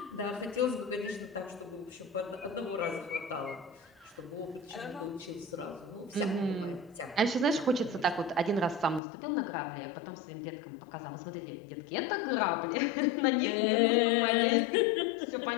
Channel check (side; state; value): right; drops out; at 9.0 s